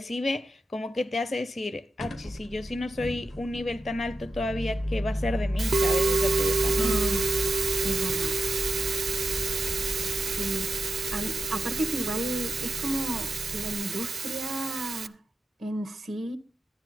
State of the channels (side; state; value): both; normal; correlation 0.90